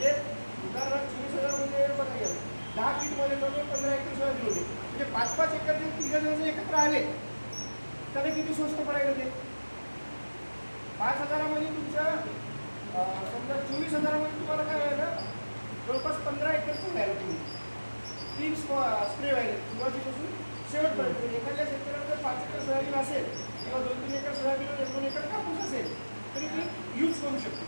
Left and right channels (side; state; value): both; inverted; correlation -1.00